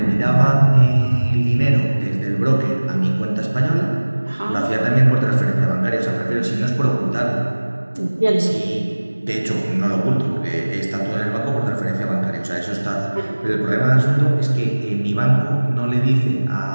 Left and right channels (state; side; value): inverted; both; correlation -1.00